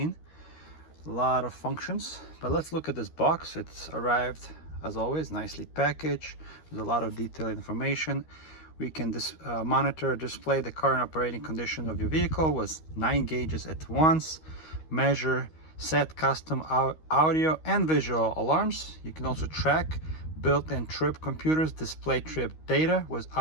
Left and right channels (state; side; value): late; right; 13 ms